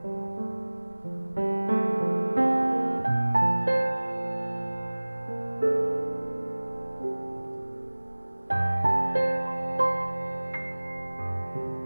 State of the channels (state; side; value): inverted; both; correlation -1.00